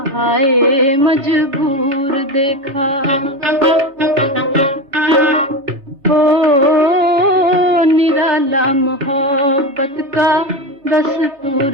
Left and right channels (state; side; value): late; left; 3.5 ms